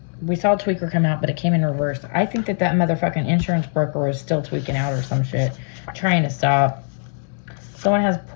We saw a tweaker come out, but it came in reverse. I think that motherfucking insurance broker is still tweaking out or some shit. Trying to stop. Someone has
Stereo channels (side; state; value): right; silent; 65 dB below the other